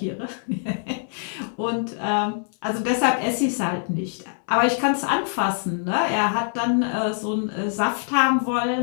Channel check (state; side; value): silent; right; 62 dB below the other